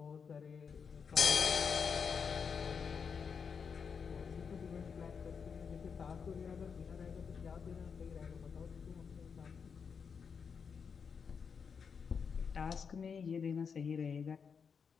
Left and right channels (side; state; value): right; quieter; 6.2 dB